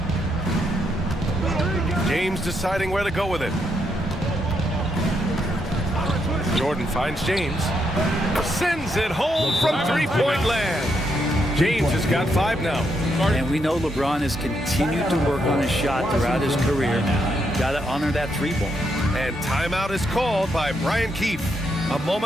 James deciding where to go with it. Jordan finds James. Sends it home from three-point land. James has got 5 now. And we know LeBron has continued to work on his shot throughout his career. Got to honor that 3-ball. And timeout is called by Brian Keefe. A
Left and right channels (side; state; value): both; normal; correlation 0.78